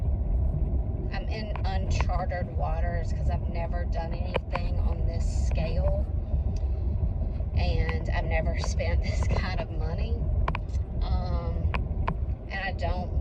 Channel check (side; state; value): both; identical; correlation 1.00